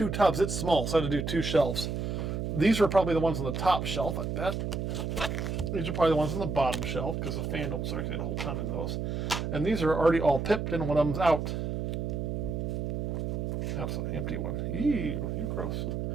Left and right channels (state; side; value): noise; right; hum, 2 dB below the sound